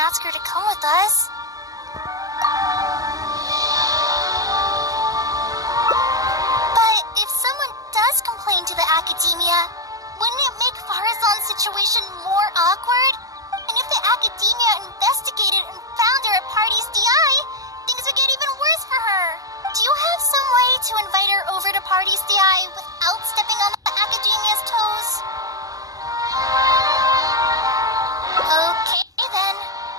her to come with us. But if someone does complain to the Academia, wouldn't it make Faruzan's situation more awkward? And if the Academia investigated and found her at Party's DI, things would get even worse for her. Do you have some way to invite her over to Party's DI without stepping on the Academia's toes? Okay then,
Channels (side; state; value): left; late; 0.17 ms